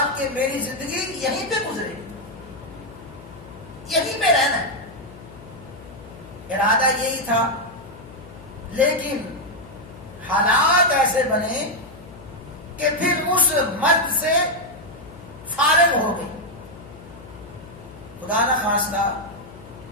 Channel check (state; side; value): noise; left; hum, 18 dB below the sound